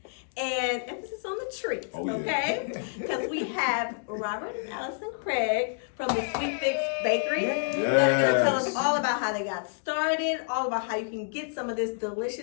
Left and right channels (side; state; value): right; silent; digital silence